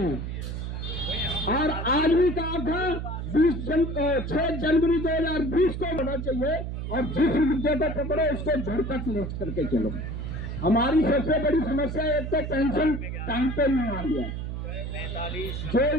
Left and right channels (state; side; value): noise; right; hum, 5 dB below the sound